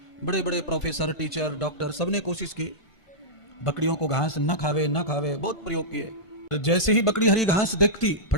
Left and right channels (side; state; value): right; late; 1.5 ms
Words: बड़े बड़े प्रोफेसर, टीचर, डॉक्टर, सबने कोशिश की बकरियों को घास न खावे, बहुत प्रयोग किए। जैसे ही बकरी हरी घास देखती